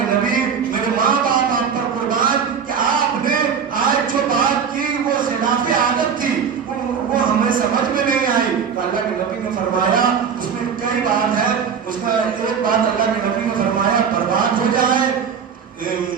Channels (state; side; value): quieter; left; 6.9 dB